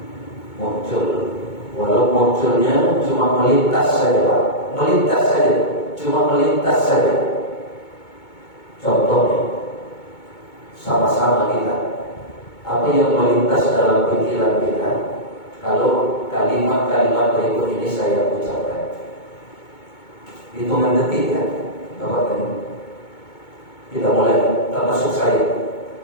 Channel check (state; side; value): late; right; 2.2 ms